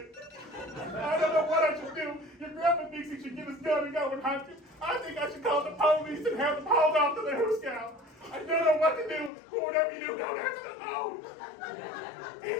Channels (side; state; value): right; drops out; at 9.3 s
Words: I don't know what I should do. Your grandpa thinks he should get his gun and go and hunt you. I think I should call the police and have them hauled off to the Who Scout. I don't know what to do. Whatever you do, don't answer the phone.